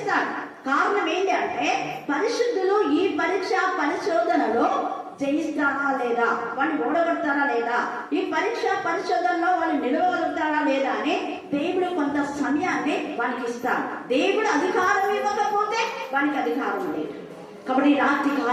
కారణం ఏంటి అంటే పరిశుద్ధులు ఈ పరీక్ష పరిశోధనలో జయిస్తారా లేదా, వాళ్ళు ఓడగొడతారా లేదా, ఈ పరీక్ష పరిశోధనలో వాళ్ళు నిలవగలుగుతారా లేదా అని దేవుడు కొంత సమయాన్ని వాళ్ళకి ఇస్తాడు. దేవుడు అధికారం ఇవ్వకపోతే వానికి అధికారం లేదు. కాబట్టి రాత్రి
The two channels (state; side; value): identical; both; correlation 1.00